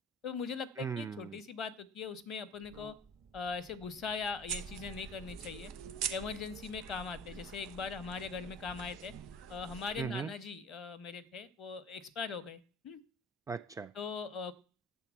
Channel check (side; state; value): both; normal; correlation 0.44